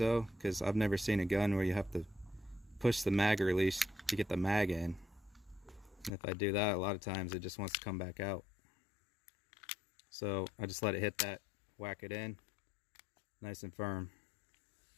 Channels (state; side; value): drops out; right; at 6.1 s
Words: because I've never seen a gun where you have to push the mag release to get the mag in. And if I do that, a lot of times it just wants to come back out. So I just let it hit that, whack it in, nice and firm.